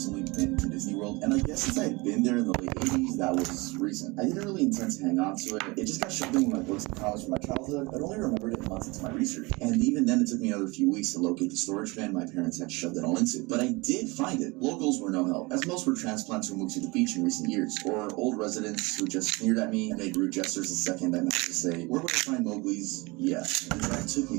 been to Disney World, and I guess since I had been there in the late 80s, that was recent. I didn't really intend to hang on to it. It just got shoved in with my books and comics from my childhood. I'd only remembered it months into my research, and even then it took me another few weeks to locate the storage bin my parents had shoved it all into. But I did find it. Locals were no help, as most were transplants who moved to the beach in recent years, or old residents who just sneered at me and made rude gestures the second I managed to say, "Where would I find Mowgli's?" Yes. And that took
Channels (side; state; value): left; quieter; 25.1 dB